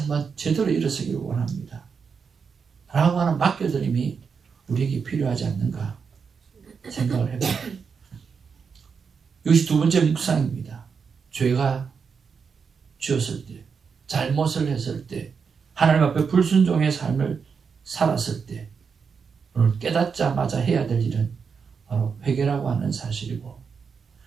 제대로 일어서기를 원합니다 라고 하는 맡겨드림이 우리에게 필요하지 않는가 생각을 해봅니다. 이것이 두 번째 묵상입니다. 죄가 지었을 때, 잘못을 했을 때, 하나님 앞에 불순종의 삶을 살았을 때 오늘 깨닫자마자 해야 될 일은 바로 회개라고 하는 사실이고,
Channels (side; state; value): left; quieter; 5.9 dB